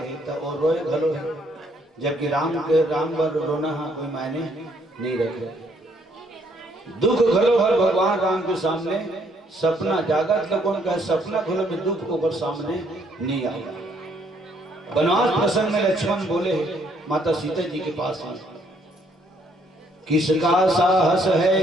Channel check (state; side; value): normal; both; correlation 0.68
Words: तो और रोए घलो है, जबकि राम वर रोना कोई मायने नहीं रखे। दुख घलो हर भगवान राम के सामने सपना जागत का कौन कहे सपना घलो में दुख ऊपर सामने नहीं आया। वनवास प्रसंग में लक्ष्मण बोले माता सीता जी के पास में, किसका साहस है